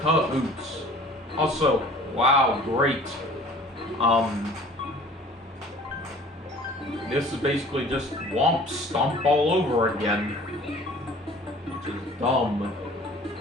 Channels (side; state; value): both; normal; correlation 0.48